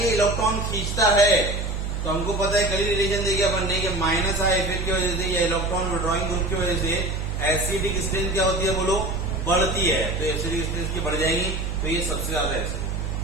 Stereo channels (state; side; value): noise; right; hum, 3 dB below the sound